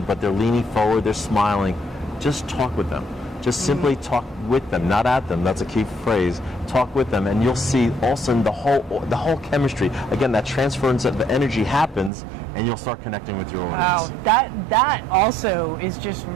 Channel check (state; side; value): drops out; left; at 12.1 s